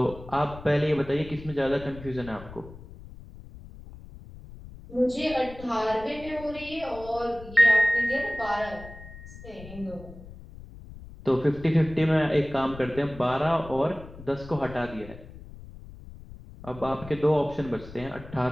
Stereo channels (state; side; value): noise; left; rumble, 16 dB below the sound